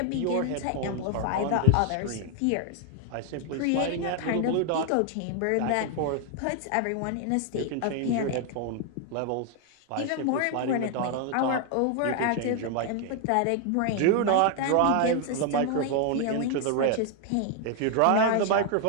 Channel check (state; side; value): different; both; correlation 0.00